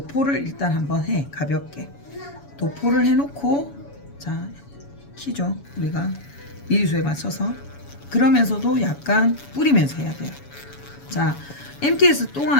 일단 한번 해. 가볍게 도포를 해놓고 자 키죠. 우리가 미리수에 맞춰서 그러면서도 약간 뿌리면서 해야 돼요. 자 MTS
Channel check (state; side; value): late; right; 7.1 ms